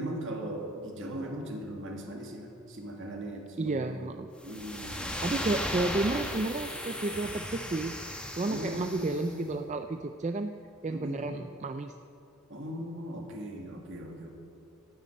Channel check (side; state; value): both; normal; correlation 0.57